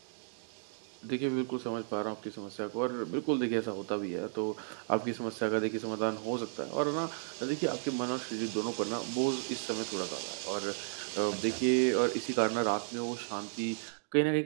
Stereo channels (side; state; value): left; silent; digital silence